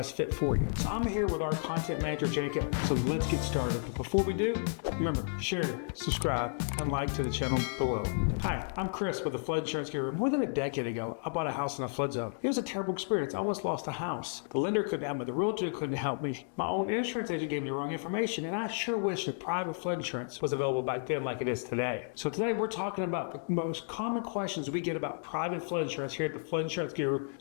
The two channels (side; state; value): right; silent; digital silence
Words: fit for you. So I'm here with our content manager, Jacob. So let's get started. But before we do, remember, share, subscribe, and like to the channel below. Hi, I'm Chris with the Flood Insurance Bureau. More than a decade ago, I bought a house in a flood zone. It was a terrible experience. I almost lost a house. The lender couldn't help me. The realtor couldn't help me. My own insurance agent gave me the wrong information, and I sure wish that private flood insurance was available back then like it is today. So today we're talking about the most common questions we get about private flood insurance here at the Flood Insurance Guru